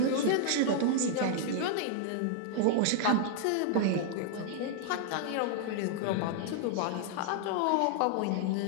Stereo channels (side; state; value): both; different; correlation -0.01